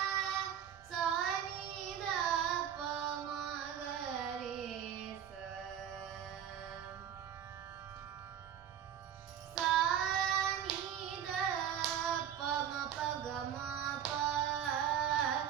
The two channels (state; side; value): quieter; left; 9.4 dB